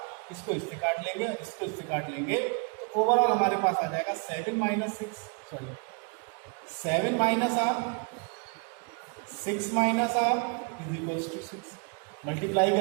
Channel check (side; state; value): left; quieter; 35.1 dB